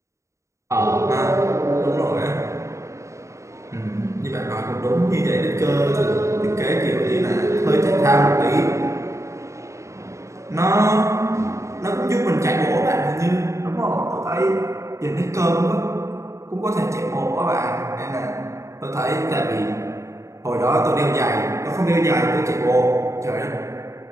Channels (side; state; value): left; late; 0.14 ms